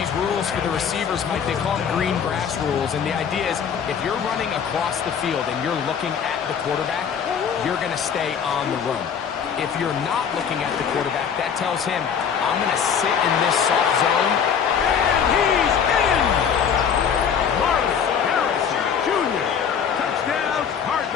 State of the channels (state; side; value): quieter; right; 7.4 dB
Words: rules for the receivers, Mike. They call them green grass rules. And the idea is if you're running across the field and you're looking at the quarterback, you're going to stay on the run. If you're not looking at the quarterback, that tells him, I'm going to sit in this soft zone. And he's in! Marvin Harrison Jr. Touchdown,